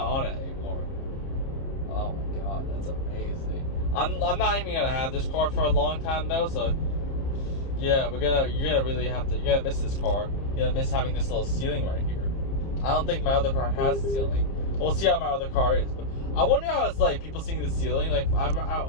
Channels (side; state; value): right; late; 30 ms